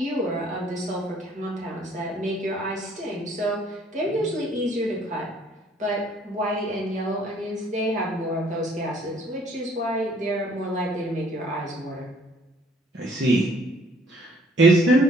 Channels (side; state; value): both; normal; correlation 0.59